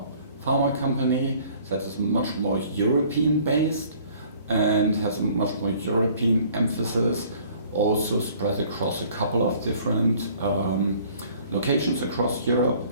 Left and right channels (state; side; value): inverted; both; correlation -0.55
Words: pharma company that is much more European based and has a much more European emphasis, also spread across a couple of different locations across Europe,